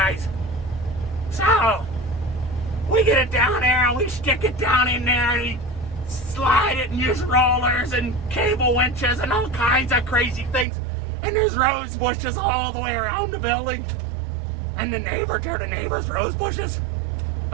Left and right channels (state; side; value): drops out; left; at 10.7 s